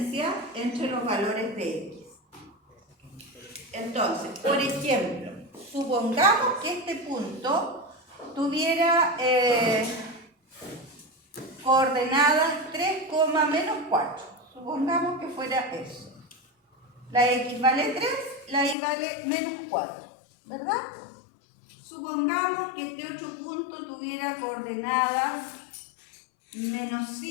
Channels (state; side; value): drops out; right; at 18.8 s